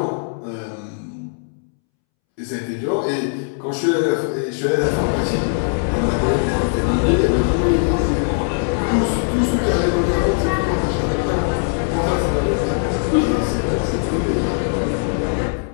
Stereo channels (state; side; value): silent; right; 66 dB below the other